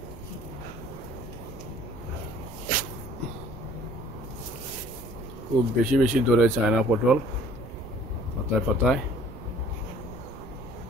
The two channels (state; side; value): noise; right; rumble, 16 dB below the sound